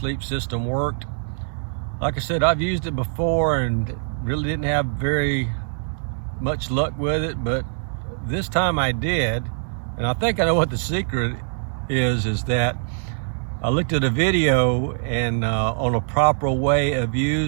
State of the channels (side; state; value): left; silent; digital silence